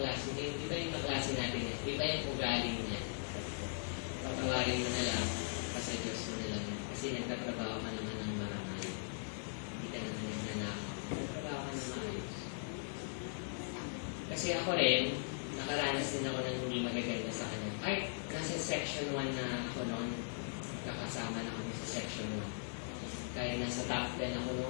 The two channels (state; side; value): silent; right; digital silence